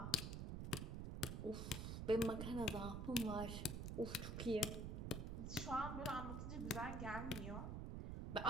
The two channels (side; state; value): right; noise; rumble, 3 dB below the sound